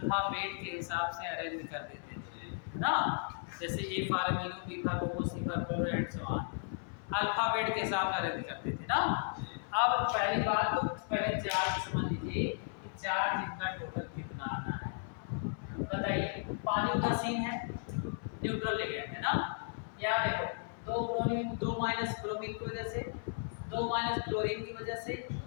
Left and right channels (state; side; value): silent; right; 54 dB below the other